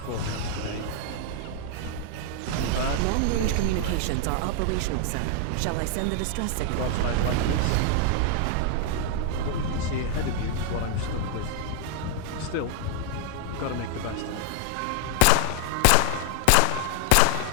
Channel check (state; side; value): different; both; correlation 0.00